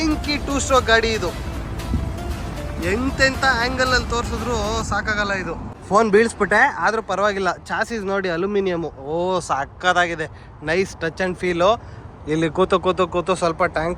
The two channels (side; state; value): both; identical; correlation 1.00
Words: 2 ಸ್ಟ್ರೋಕ್ ಗಾಡಿ. ಇದು ಎಂತೆಂಥ ಆ್ಯಂಗಲ್ ಅಲ್ಲಿ ತೋರಿಸಿದ್ರು ಸಾಕಾಗಲ್ಲ. ಇದು ಫೋನ್ ಬೀಳಿಸ್ಬಿಟ್ಟೆ, ಆದರೂ ಪರವಾಗಿಲ್ಲ. ಚಾಸಿಸ್ ನೋಡಿ ಅಲ್ಯೂಮಿನಿಯಮು, ಸಾಕಾಗಿದೆ. Nice touch and feel. ಇಲ್ಲಿ ಕೂತು ಸ್ವಲ್ಪ ಟ್ಯಾಂಕ್